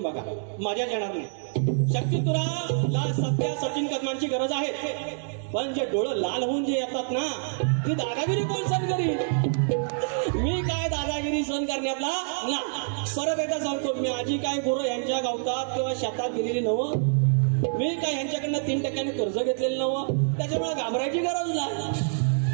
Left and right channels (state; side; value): silent; left; digital silence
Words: बघा, मजाच येणार नाही. शक्तितुराला सध्या सचिन कदमांची गरज आहे, पण जे डोळं लाल होऊन जे येतात ना, ती दादागिरी कोण सहन करील? मी काय दादागिरी सहन करण्यातला ना. परत एकदा सांगतो, मी आजी काय गुरु यांच्या गावतात किंवा शेतात गेलेली नवं, मी काय यांच्याकडनं 3% कर्ज घेतलेलं नवं, त्याच्यामुळे घाबरायची गरज